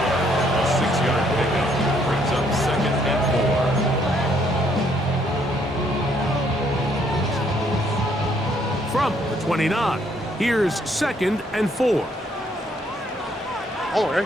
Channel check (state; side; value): normal; both; correlation 0.68